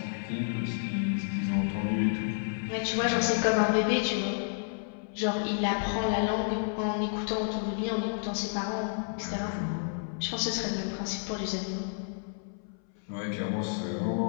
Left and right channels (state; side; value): silent; right; 57 dB below the other